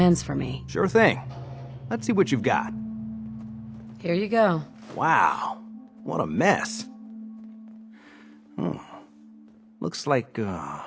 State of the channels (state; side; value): identical; both; correlation 1.00